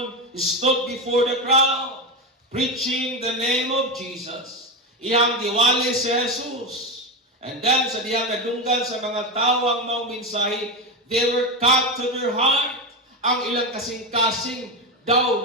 stood before the crowd, preaching the name of Jesus. Iyang giwali si Jesus. And then sa diyang nadunggan sa mga tao ang maong mensahe, they were cut to their heart. Ang ilang kasing-kasing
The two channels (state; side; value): normal; both; correlation 0.16